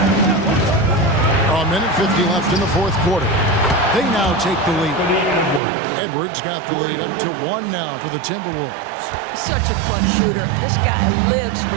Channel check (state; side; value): drops out; left; at 5.6 s